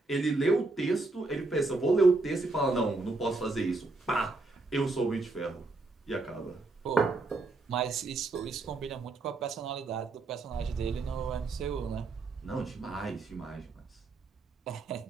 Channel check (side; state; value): left; quieter; 3.4 dB